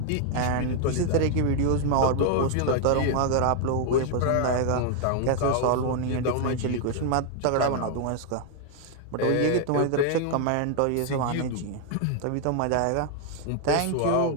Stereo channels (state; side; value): different; both; correlation 0.00